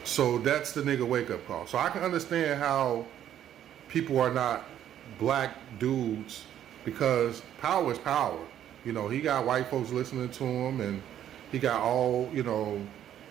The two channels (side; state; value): left; quieter; 10.8 dB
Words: So that's the nigga wake up call. So I can understand how people are not black dudes, because power is power. You know, he got white folks listening to him, and he got all, you know,